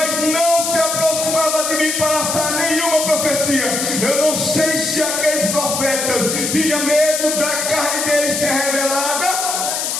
não se aproximava de mim para lançar nenhuma profecia. Eu não sei se aqueles profetas tinham medo da carne deles ser revelada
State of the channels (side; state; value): left; noise; hiss, 1 dB below the sound